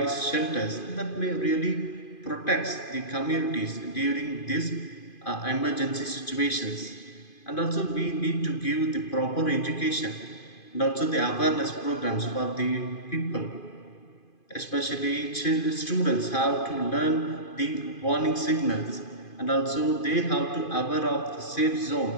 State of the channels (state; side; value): late; right; 2.5 ms